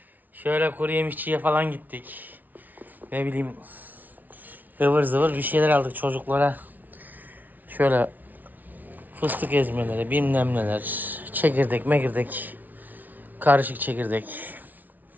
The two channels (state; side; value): late; left; 0.080 ms